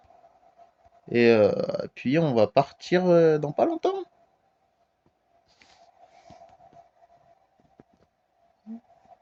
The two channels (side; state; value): both; identical; correlation 1.00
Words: Et puis on va partir dans pas longtemps.